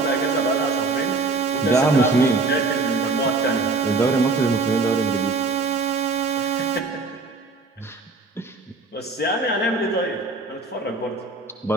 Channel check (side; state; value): left; quieter; 3.6 dB